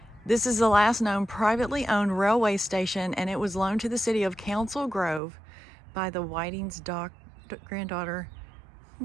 This is the last known privately owned railway station, and it was loaned to the city of Council Grove by the Whiting's granddaughter.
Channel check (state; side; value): drops out; left; at 5.2 s